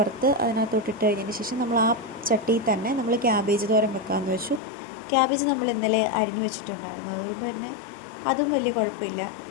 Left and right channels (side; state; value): right; drops out; at 4.6 s